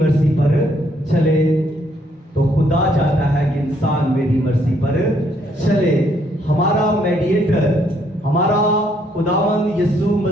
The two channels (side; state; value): both; normal; correlation 0.70